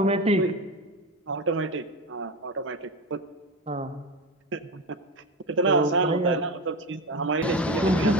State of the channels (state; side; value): normal; both; correlation 0.22